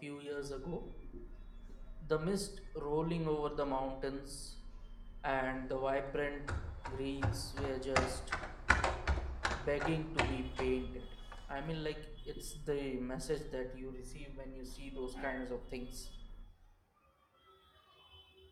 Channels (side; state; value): both; identical; correlation 1.00